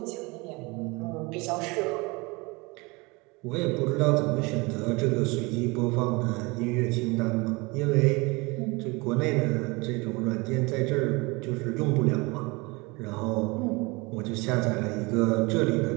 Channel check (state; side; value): quieter; left; 25.9 dB